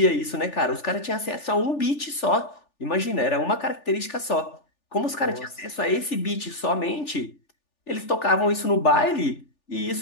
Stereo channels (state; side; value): late; right; 3.4 ms